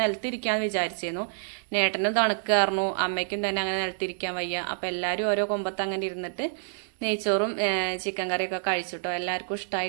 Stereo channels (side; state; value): left; silent; digital silence